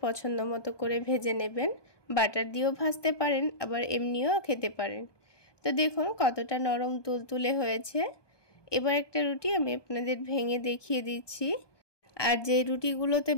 পছন্দ মতো করে ভেজে নেবেন, বাটার দিয়েও ভাজতে পারেন আবার এমনিও খেতে পারেন। তো দেখুন কতটা নরম তুলতুলে হয়েছে। এবার একটা রুটি আমি আপনাদের ভেঙে দেখিয়ে দিচ্ছি। আর যে রুটিগুলোতে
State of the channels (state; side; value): late; right; 1.2 ms